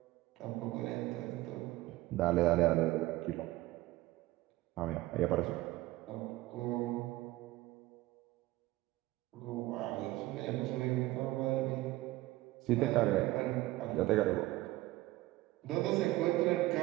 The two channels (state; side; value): quieter; left; 17.9 dB